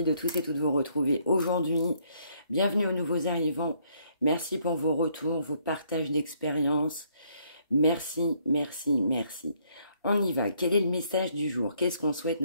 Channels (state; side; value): inverted; both; correlation -0.69